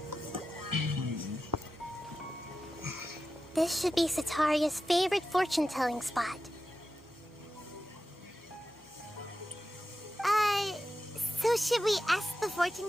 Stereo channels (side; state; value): both; normal; correlation 0.92